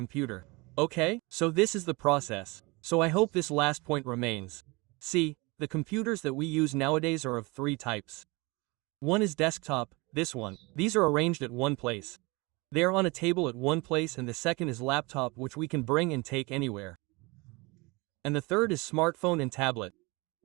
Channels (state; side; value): quieter; left; 25.7 dB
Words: Okay, so this is the process. So I hope this last point remains. See, the computers that we use nowadays are of three types. One is desktop, this one. These are arranged at one place. They are on a table at one place, and the second is laptop, which we can bring and take anywhere. And the third is smartphone and tablet.